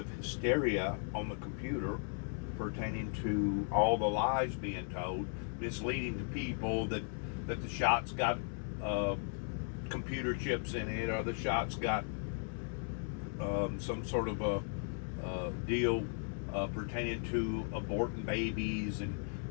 hysteria on the computer pertaining to all the lies being told, misleading to people that the shot's got computer chips in it, or the shot's got some sort of a deal pertaining to aborting babies, and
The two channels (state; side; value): silent; right; 53 dB below the other